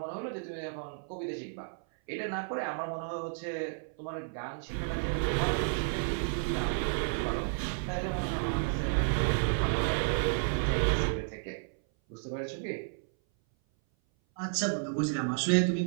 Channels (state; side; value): silent; left; 56 dB below the other